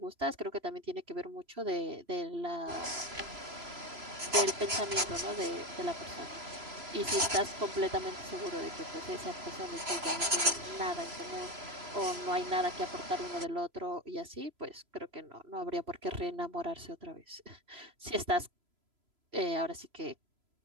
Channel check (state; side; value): late; left; 3.0 ms